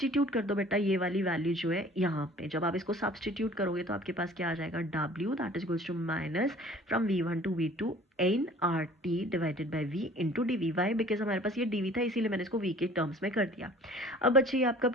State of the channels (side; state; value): both; normal; correlation 0.49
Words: कर दो बेटा ये वाली वैल्यू जो है यहाँ पे, जब आप इसको सब्सटीट्यूट करोगे तो आपके पास क्या आ जाएगा, W that is equals to minus from V one to V two N R T divided by V into D V. Why, because हमारे पास ये डी वी था इसीलिए मैंने इसको वी के टर्म्स में कर दिया. अब बच्चे ये आपका